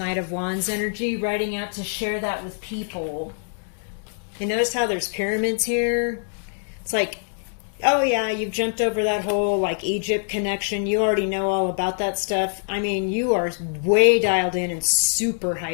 of Wands energy, riding out to share that with people. And notice how there's pyramids here? It's like, oh yeah, you've jumped over that whole like Egypt connection. You already know all about that stuff. I mean, you are way dialed in and super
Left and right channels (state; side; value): silent; right; digital silence